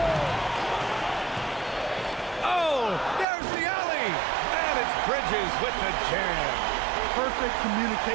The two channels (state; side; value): drops out; left; at 3.2 s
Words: Oh, there's the alley. And it's Bridges with the jam. Perfect